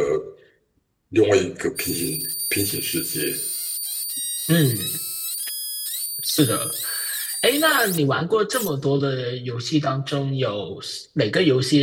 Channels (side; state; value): both; identical; correlation 1.00